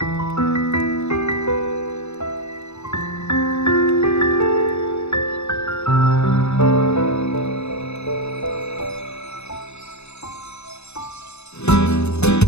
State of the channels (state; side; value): late; right; 0.81 ms